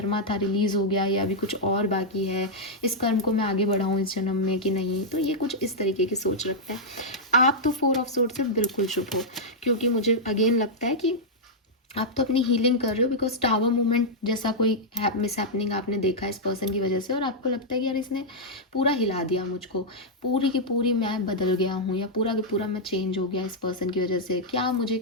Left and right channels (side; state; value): both; normal; correlation -0.06